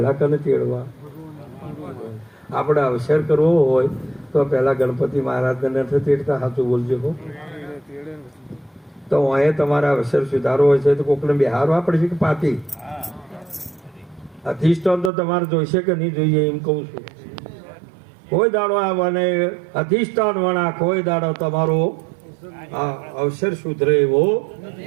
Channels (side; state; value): left; drops out; at 15.1 s